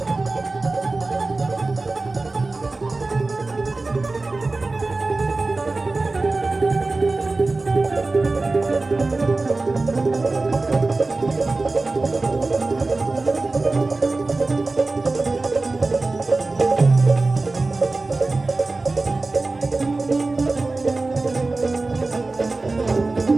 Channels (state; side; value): quieter; left; 3.4 dB